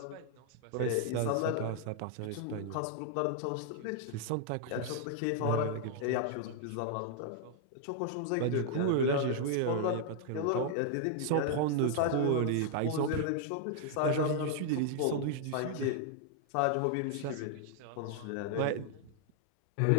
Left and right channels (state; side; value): different; both; correlation -0.01